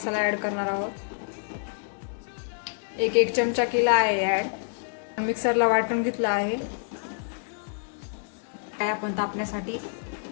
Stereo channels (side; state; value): right; silent; digital silence